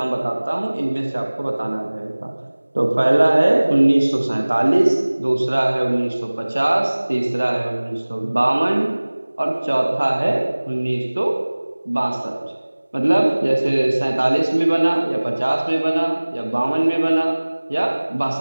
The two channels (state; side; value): inverted; both; correlation -1.00